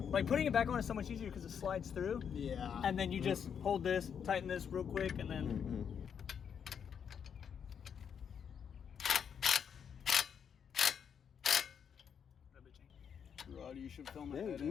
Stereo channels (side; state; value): right; quieter; 7.6 dB